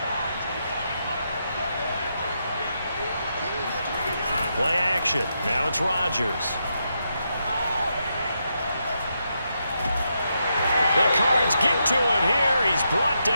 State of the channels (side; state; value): both; inverted; correlation -0.82